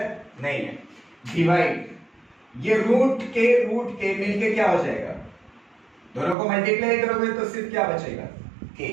नहीं है। डिवाइड, ये रूट के मिलके क्या हो जाएगा? दोनों को मल्टीप्लाई करोगे तो सिर्फ क्या बचेगा? k।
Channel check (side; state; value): left; drops out; at 6.4 s